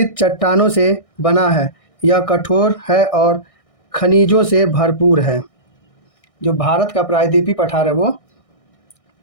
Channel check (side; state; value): right; late; 1.6 ms